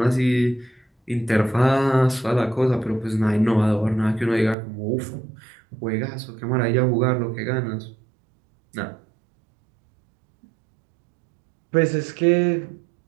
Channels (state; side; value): drops out; left; at 4.5 s